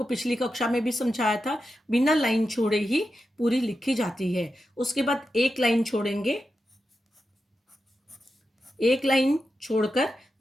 पिछली कक्षा में भी समझाया था, बिना लाइन छोड़े ही पूरी लिखी जाती है। उसके बाद एक लाइन छोड़ेंगे, एक लाइन छोड़कर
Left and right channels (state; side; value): normal; both; correlation 0.89